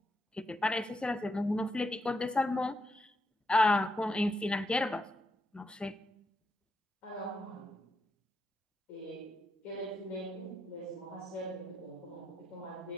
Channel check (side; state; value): both; normal; correlation 0.82